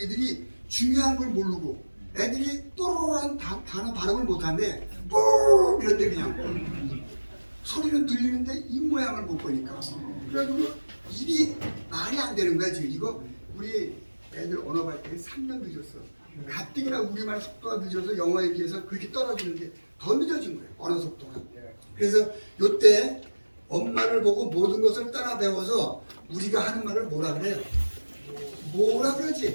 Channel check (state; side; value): inverted; both; correlation -1.00